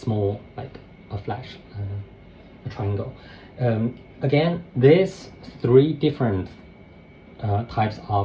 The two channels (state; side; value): identical; both; correlation 1.00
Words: like a flash, a triangle. Again, these three different types